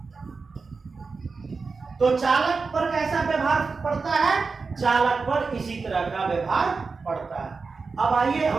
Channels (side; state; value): left; quieter; 4.5 dB